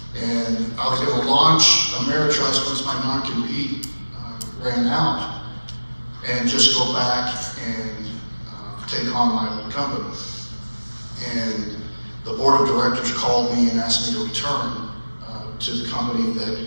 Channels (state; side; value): inverted; both; correlation -1.00